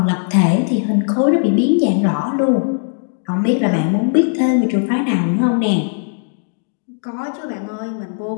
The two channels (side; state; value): right; silent; digital silence